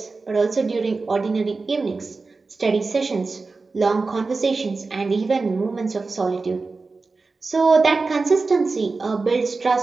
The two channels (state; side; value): quieter; left; 4.0 dB